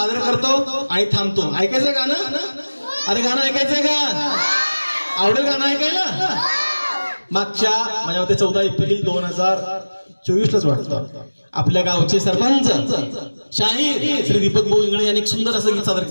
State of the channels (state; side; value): inverted; both; correlation -1.00